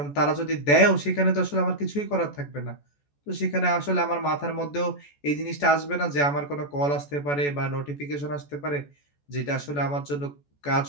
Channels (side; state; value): right; late; 14 ms